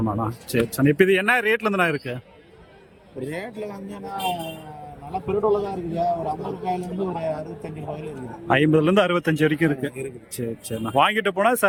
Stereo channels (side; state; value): both; identical; correlation 1.00